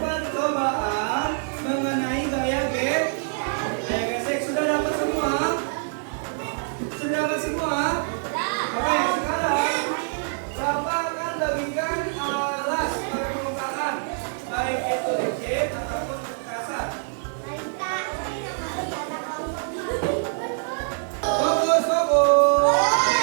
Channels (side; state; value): left; silent; digital silence